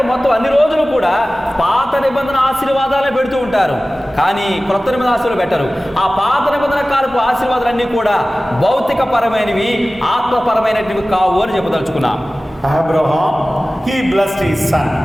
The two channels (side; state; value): both; normal; correlation 0.97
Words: మొత్తం అన్ని రోజులు కూడా పాత నిబంధన ఆశీర్వాదాలే పెడుతూ ఉంటారు, కానీ క్రొత్త నిబంధన ఆశీర్వాదాలు పెట్టరు. ఆ పాత నిబంధన కాలపు ఆశీర్వాదాలన్నీ కూడా భౌతిక పరమైనవి, ఆత్మపరమైనవి కావు అని చెప్పదలుచుకున్నాం. Abraham, he blessed his son.